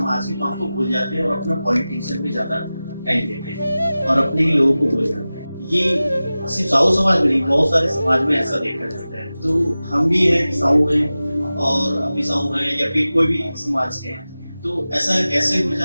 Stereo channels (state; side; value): inverted; both; correlation -0.96